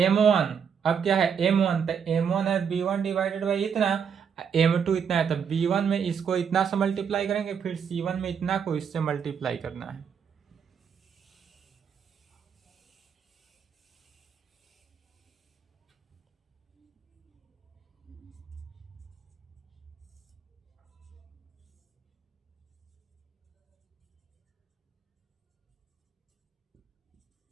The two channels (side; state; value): left; quieter; 7.1 dB